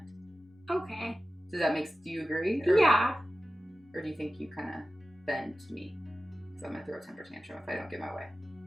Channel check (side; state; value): both; normal; correlation 0.95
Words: Okay. Do you agree? Yeah. Or do you think you kind of bend to me? Because I'm going to throw a temper tantrum if I don't get my way.